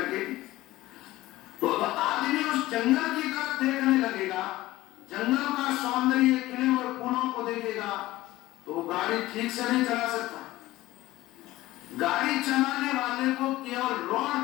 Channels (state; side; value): quieter; right; 17.2 dB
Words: के, तो आदमी उस जंगल की तरफ देखने लगेगा, जंगल का सौंदर्य, किले और फूलों को देखेगा, तो वो गाड़ी ठीक से नहीं चला सकता। गाड़ी चलाने वाले को केवल